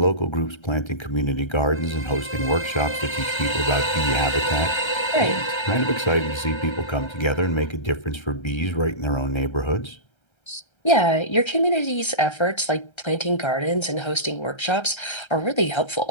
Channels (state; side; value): late; right; 1.3 ms